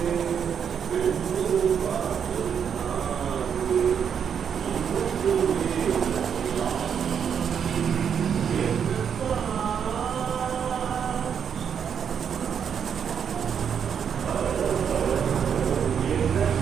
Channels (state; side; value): quieter; left; 7.6 dB